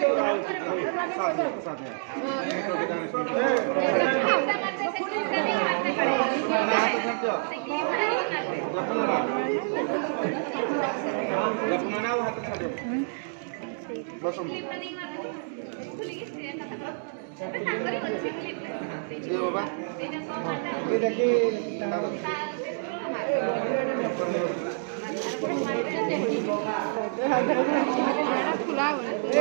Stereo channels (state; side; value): silent; left; digital silence